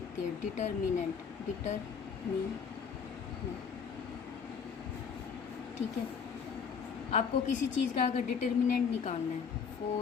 हैं। डिटर्मिनेंट ठीक है। आपको किसी चीज़ का अगर डिटर्मिनेंट निकालना है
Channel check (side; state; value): right; quieter; 6.4 dB